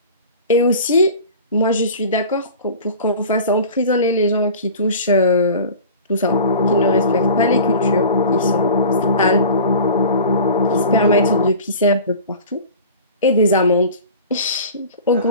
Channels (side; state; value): both; inverted; correlation -0.39